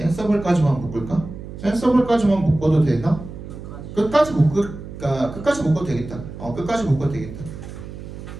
묶을까? 센서블까지만 묶어도 되나? 끝까지 묶어도 되겠다. 끝까지 묶어도 되겠다.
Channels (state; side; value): noise; right; hum, 12 dB below the sound